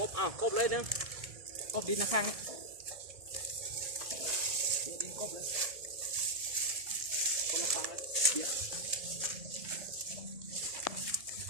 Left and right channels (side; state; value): left; late; 1.7 ms